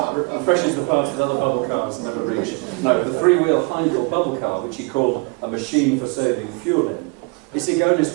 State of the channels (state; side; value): quieter; left; 31.1 dB